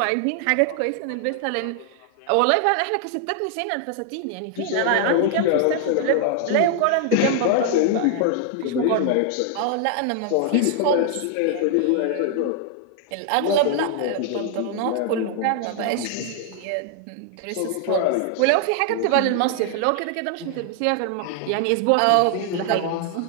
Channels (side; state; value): both; different; correlation 0.00